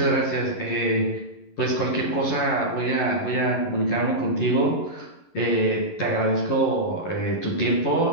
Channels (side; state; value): right; late; 11 ms